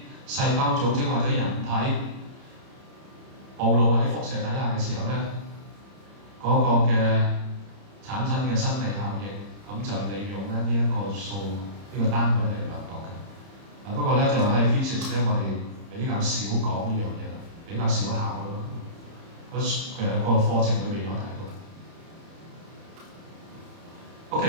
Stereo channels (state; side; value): late; left; 30 ms